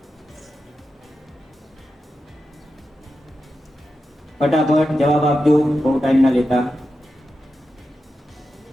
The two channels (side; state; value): both; normal; correlation 0.90